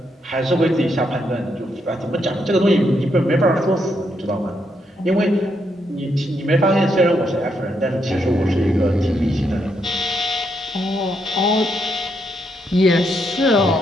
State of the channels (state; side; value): normal; both; correlation 0.78